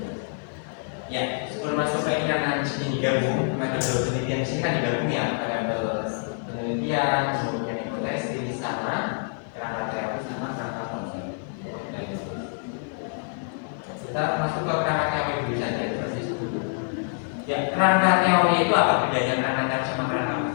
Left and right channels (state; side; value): silent; right; 61 dB below the other